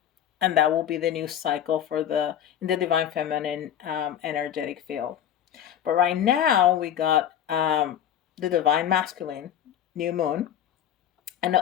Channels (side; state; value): right; quieter; 10.1 dB